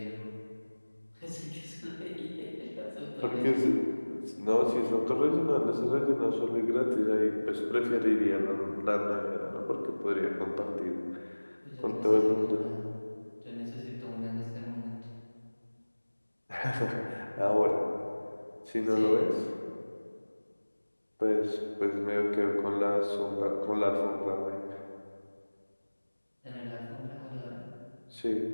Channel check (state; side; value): inverted; both; correlation -1.00